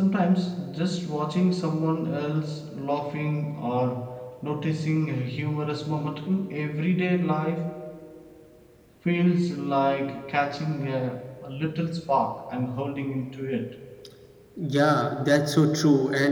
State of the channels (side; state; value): both; identical; correlation 1.00